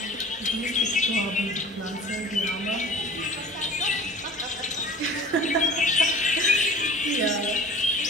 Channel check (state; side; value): normal; both; correlation 0.42